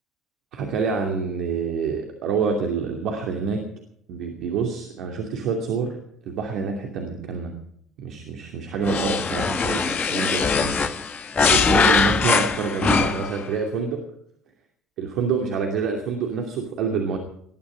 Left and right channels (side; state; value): both; normal; correlation 0.47